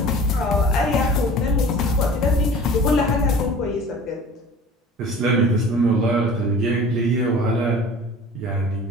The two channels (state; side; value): normal; both; correlation 0.43